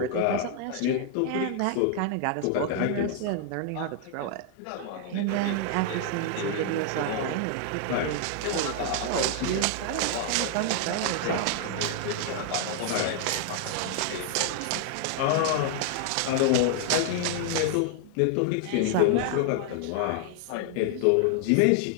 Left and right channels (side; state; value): both; different; correlation 0.00